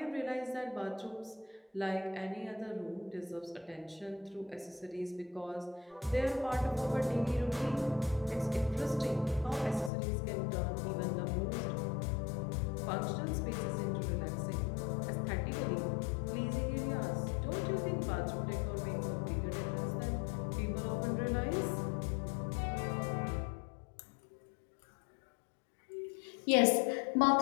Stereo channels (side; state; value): right; drops out; at 9.9 s